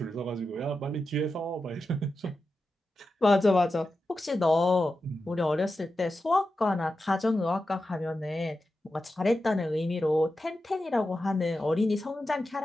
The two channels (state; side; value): normal; both; correlation 0.91